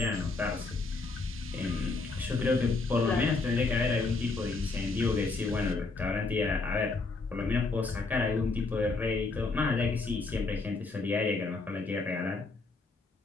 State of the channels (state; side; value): quieter; right; 3.8 dB